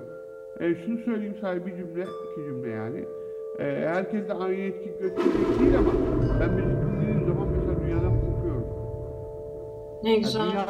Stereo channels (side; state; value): both; identical; correlation 1.00